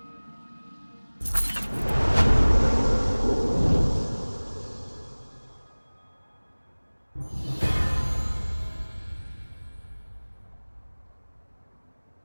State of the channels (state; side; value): inverted; both; correlation -1.00